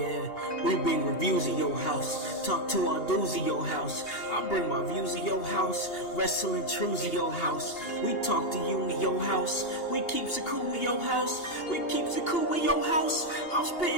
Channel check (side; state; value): right; late; 2.8 ms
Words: we bring reviews of your house. Talk to our dudes of your house. I bring my views of your house. Wrestling truths of your house. We talk to you in your house. We keeps it cool in your house. We keeps it cool in your house. I'm